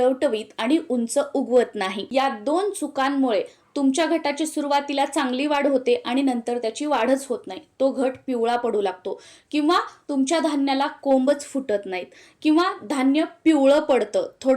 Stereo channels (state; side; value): identical; both; correlation 1.00